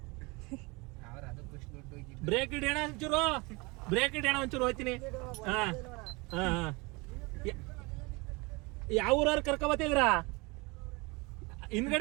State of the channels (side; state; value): left; quieter; 26.5 dB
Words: ಬ್ರೇಕ್ ಹಿಡಿಯೋಣ ಒಂಚೂರು, ಬ್ರೇಕ್ ಹಿಡಿಯೋಣ ಒಂಚೂರು. ಹೋಯ್ತೀನಿ. ಯಾವ ಊರವ್ರು ಕರ್ಕೊಬತ್ತಿದ್ರ?